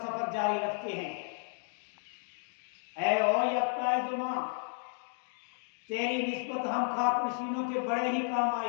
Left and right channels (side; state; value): right; silent; 56 dB below the other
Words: जारी रखते हैं। ऐ ओ यफ्ताए जुमा, तेरी निस्बत हम खाक नशीनों के बड़े ही काम